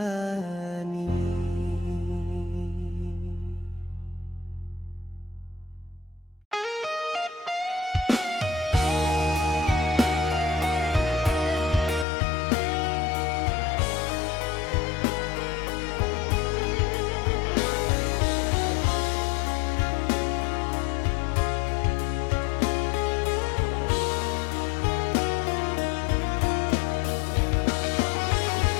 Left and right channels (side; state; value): right; drops out; at 12.1 s